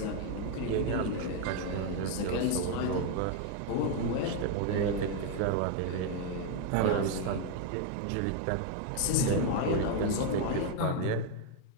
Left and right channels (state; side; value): different; both; correlation 0.00